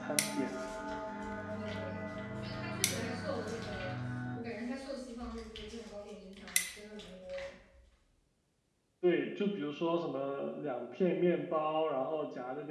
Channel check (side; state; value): both; identical; correlation 1.00